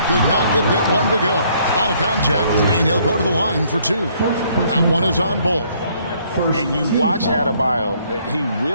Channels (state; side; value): inverted; both; correlation -0.65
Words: could not get that one to go. Out of contact, and he'll go to the line for 2. That one is on Bull. And you watch Adebayo, he